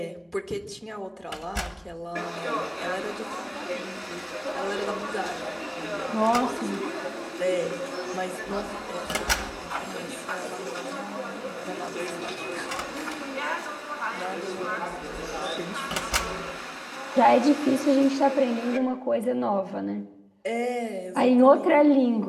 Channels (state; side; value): identical; both; correlation 1.00